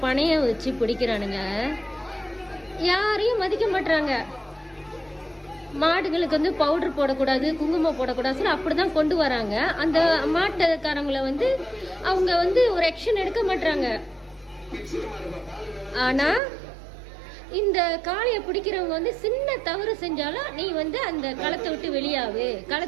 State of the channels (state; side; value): drops out; left; at 16.4 s